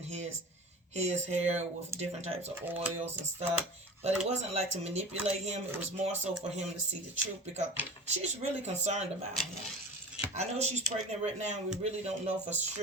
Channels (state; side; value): normal; both; correlation 0.35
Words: his hair with different types of oils and stuff. But it wasn't like to manipulate him. It was more so for him to see the truth, because she's really concerned about him. I know she's pregnant right now. We really don't know for